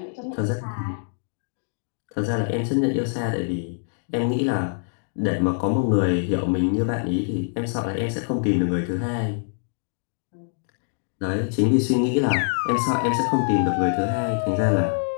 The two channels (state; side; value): silent; right; digital silence